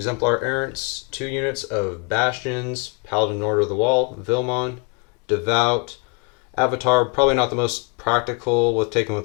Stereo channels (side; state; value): right; quieter; 35.1 dB